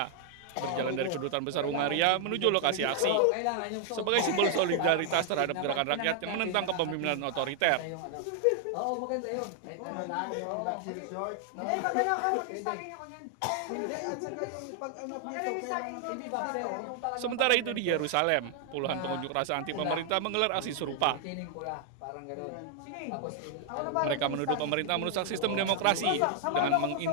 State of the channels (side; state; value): both; different; correlation 0.00